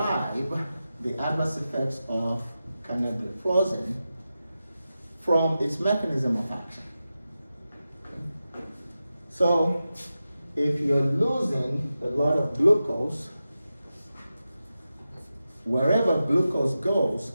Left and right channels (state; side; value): inverted; both; correlation -0.92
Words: the adverse effects of canagliflozin from its mechanism of action. So, if you're losing a lot of glucose, wherever glucose goes,